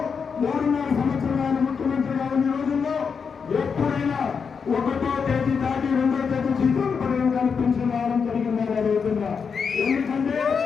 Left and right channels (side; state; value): right; quieter; 6.0 dB